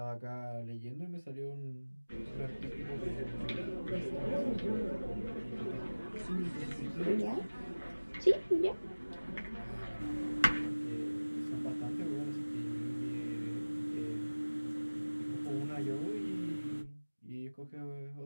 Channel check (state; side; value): inverted; both; correlation -1.00